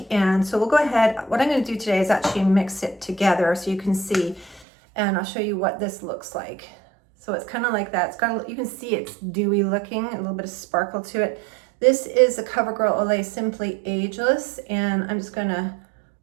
And so we'll go ahead. What I'm going to do today is actually mix it together so you can see. And I'll show you what this looks like. So it's kind of like that. It's got, you can see it's dewy looking, a little bit of sparkle to it. This is the CoverGirl Olay Simply Ageless. And I'm just going to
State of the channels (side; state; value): left; drops out; at 4.7 s